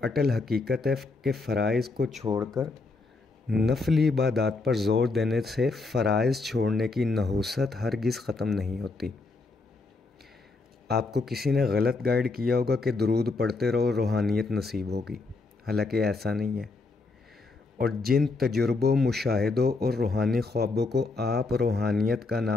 अटल हकीकत है कि फ़राइज़ को छोड़कर नफली इबादत पर ज़ोर देने से फ़राइज़ छोड़ने की नहुसत हरगिज़ ख़त्म नहीं होती। आपको किसी ने गलत गाइड किया होगा कि दुरूद पढ़ते रहो, रूहानियत नसीब होगी, हालांकि ऐसा नहीं है। और जिन तजुर्बों, मुशाहिदों और रूहानी ख्वाबों को आप रूहानियत का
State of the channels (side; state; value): right; quieter; 3.7 dB